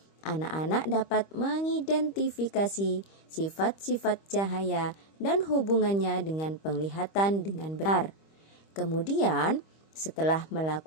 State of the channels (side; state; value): right; late; 25 ms